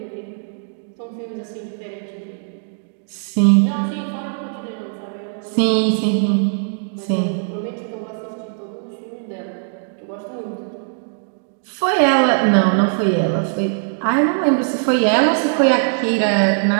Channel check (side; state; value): left; silent; digital silence